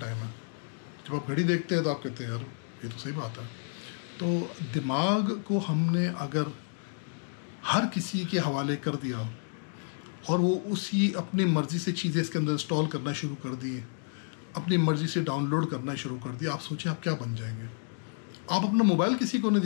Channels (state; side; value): silent; right; digital silence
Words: ہے. جب آپ گھڑی دیکھتے ہیں تو آپ کہتے ہیں یار یہ تو صحیح بات ہے. تو دماغ کو ہم نے اگر ہر کسی کے حوالے کر دیا اور وہ اسی اپنی مرضی سے چیزیں اس کے اندر انسٹال کرنا شروع کر دی, اپنی مرضی سے ڈاؤن لوڈ کرنا شروع کر دیا, آپ سوچیں آپ کیا بن جائیں گے. آپ اپنا موبائل کسی کو نہیں